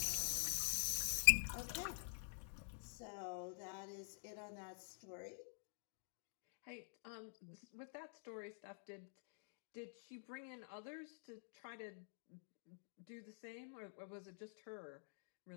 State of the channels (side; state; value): right; silent; digital silence